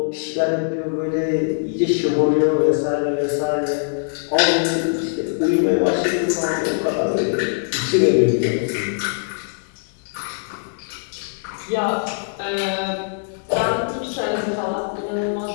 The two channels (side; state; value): right; silent; 64 dB below the other